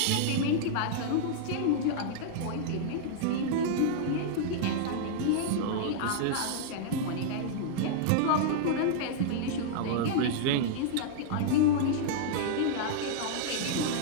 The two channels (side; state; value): both; different; correlation -0.01